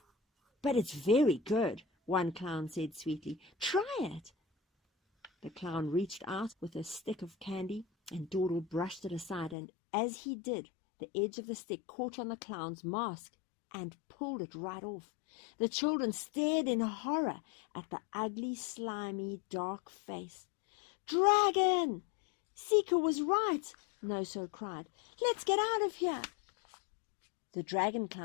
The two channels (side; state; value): right; drops out; at 9.6 s